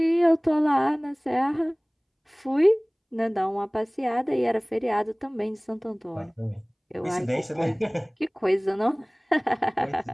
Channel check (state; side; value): identical; both; correlation 1.00